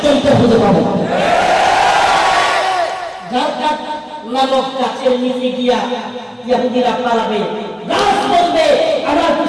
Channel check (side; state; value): both; identical; correlation 1.00